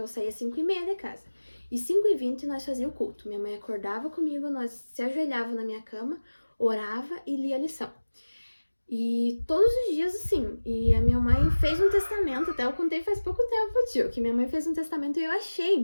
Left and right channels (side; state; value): both; inverted; correlation -1.00